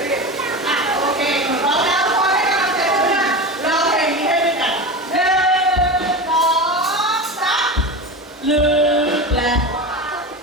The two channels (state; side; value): normal; both; correlation 0.25